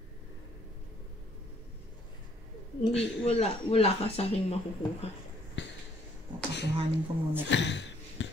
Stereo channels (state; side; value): normal; both; correlation 0.64